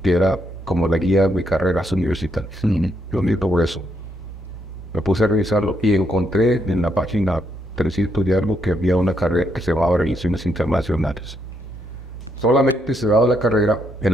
que era como la guía de carreras universitarias. Yo necesito por eso. Me puse a revisarlo y encontré en la página 300 de algo que había una carrera que se llamaba Relaciones Internacionales. Solamente se daba la carrera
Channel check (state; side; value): normal; both; correlation 0.76